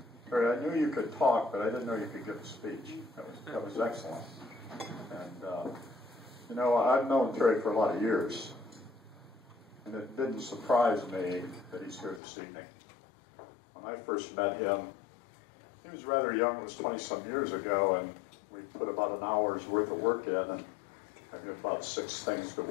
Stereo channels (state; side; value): drops out; right; at 12.2 s